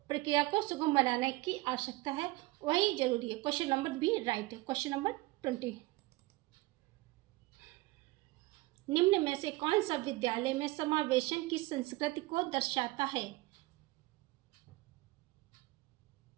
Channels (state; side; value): quieter; left; 21.1 dB